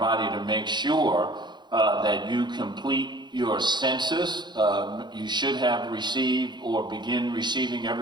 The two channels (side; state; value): left; late; 0.21 ms